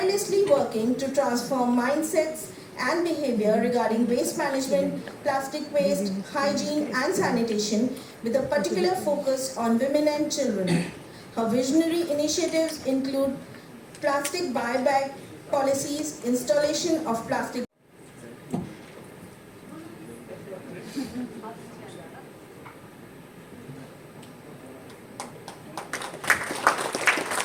working to transform mindsets and behavior regarding waste management, plastic waste, hygiene and sanitation with a particular focus on women and children. Her visionary initiatives include plastic buyback policies, installation of plastic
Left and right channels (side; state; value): both; identical; correlation 1.00